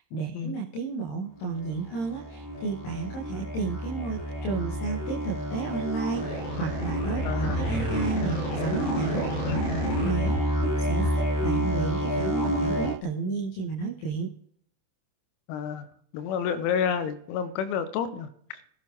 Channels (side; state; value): right; late; 26 ms